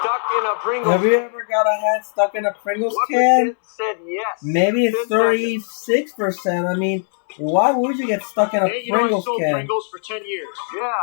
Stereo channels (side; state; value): right; silent; digital silence